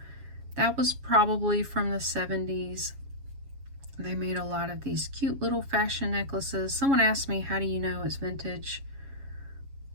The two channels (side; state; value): left; late; 7.3 ms